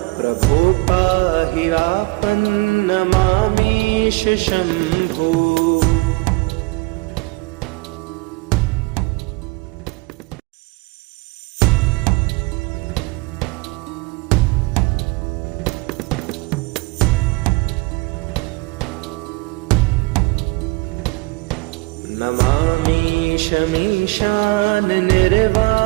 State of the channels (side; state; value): left; quieter; 24.4 dB